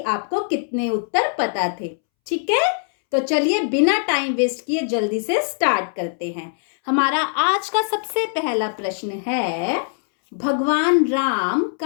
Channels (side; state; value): right; silent; 65 dB below the other